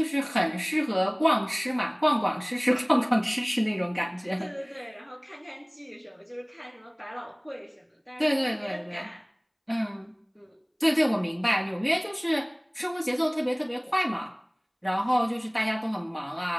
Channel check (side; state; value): both; identical; correlation 1.00